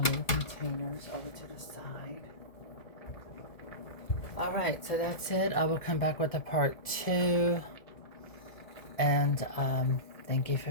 little containers over to the side. Alright, so that's it. I will come back with a part 2. And thank you for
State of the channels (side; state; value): right; late; 2.0 ms